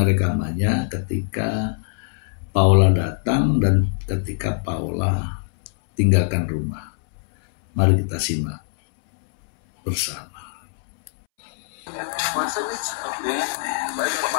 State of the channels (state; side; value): silent; right; 64 dB below the other